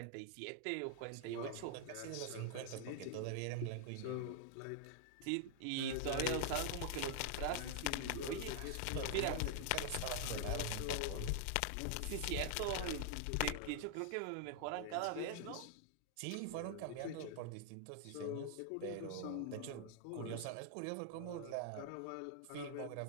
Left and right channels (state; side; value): different; both; correlation 0.00